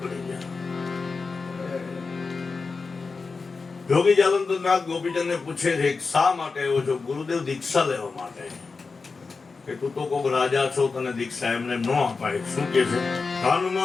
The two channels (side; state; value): right; quieter; 4.4 dB